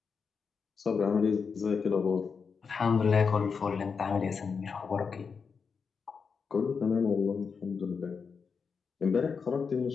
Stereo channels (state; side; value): quieter; right; 5.6 dB